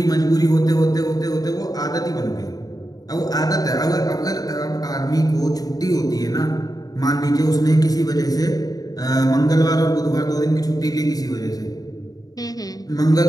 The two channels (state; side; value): late; right; 0.18 ms